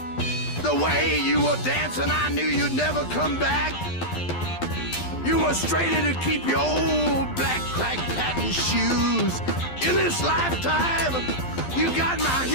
The the way you were dancing, I knew you'd never come back. You were straighter to keep your old black crack patent shoes. In this lifetime, you got my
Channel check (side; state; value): right; late; 12 ms